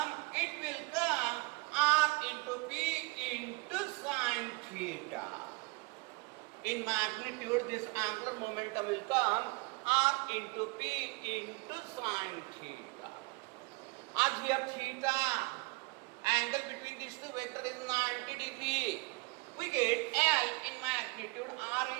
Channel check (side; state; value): left; quieter; 27.4 dB